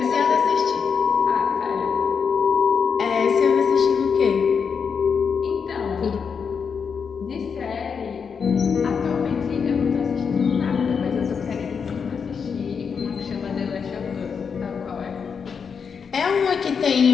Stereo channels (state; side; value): quieter; right; 6.2 dB